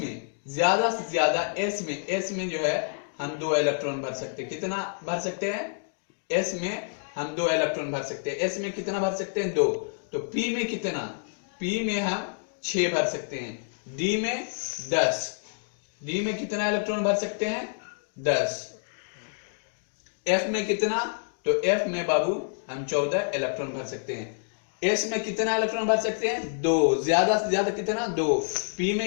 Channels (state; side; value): silent; right; digital silence